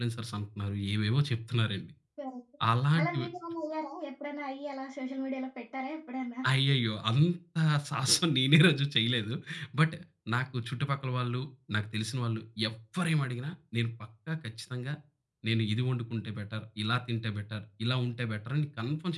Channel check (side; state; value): both; identical; correlation 1.00